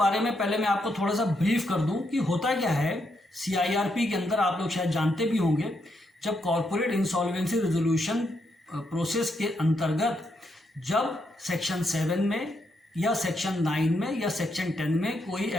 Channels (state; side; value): normal; both; correlation 0.79